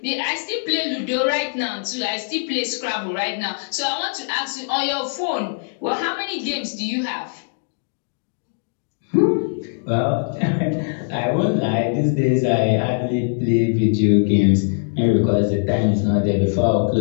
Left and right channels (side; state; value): right; silent; digital silence